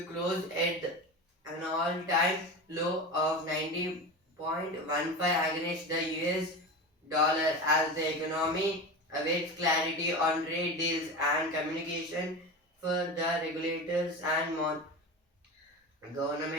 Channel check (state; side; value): normal; both; correlation 0.26